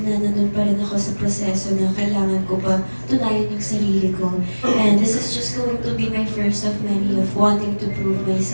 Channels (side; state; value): both; inverted; correlation -1.00